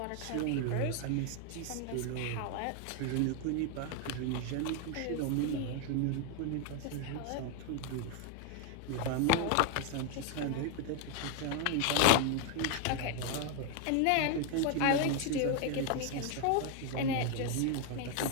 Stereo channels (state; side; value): different; both; correlation 0.01